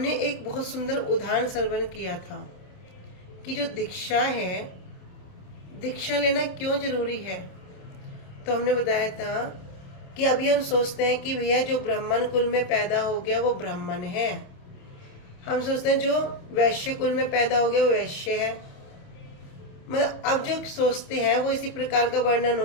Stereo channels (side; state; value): right; late; 27 ms